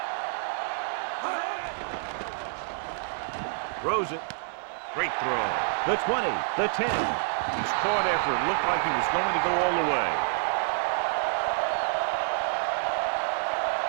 Throws it. Great throw. The 20, the 10. He's caught after it looked like he was going to go all the way.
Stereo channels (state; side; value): silent; left; digital silence